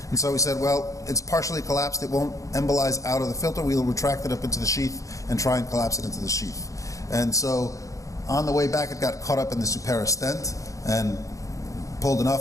And so we said, well, it's partially collapsed. It won't embolize out of the filter. We'll retract it up into the sheath and try and collapse it into the sheath. And so on the way back, it got caught up in the superior stent and pulled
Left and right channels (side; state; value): right; late; 0.16 ms